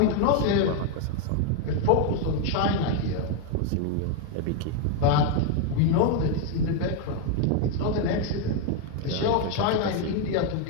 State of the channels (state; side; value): different; both; correlation 0.01